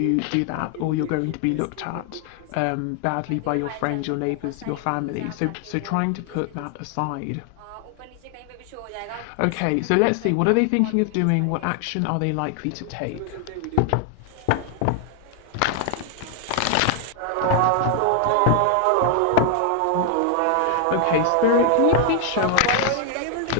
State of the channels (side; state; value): both; different; correlation 0.00